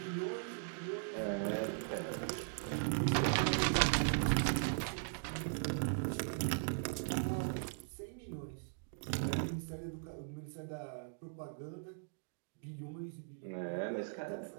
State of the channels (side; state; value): left; silent; digital silence